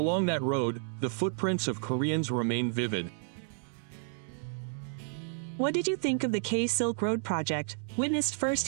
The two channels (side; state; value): left; silent; 57 dB below the other